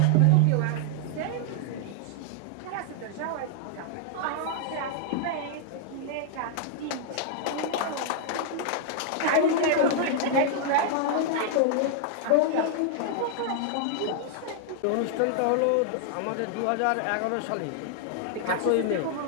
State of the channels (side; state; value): both; different; correlation -0.01